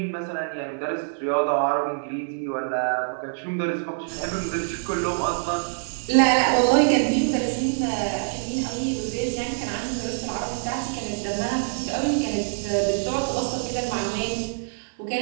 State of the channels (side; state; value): left; silent; digital silence